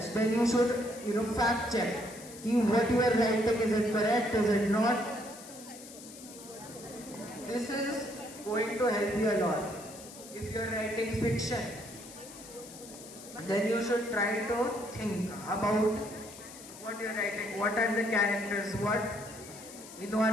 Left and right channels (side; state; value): left; noise; hiss, 16 dB below the sound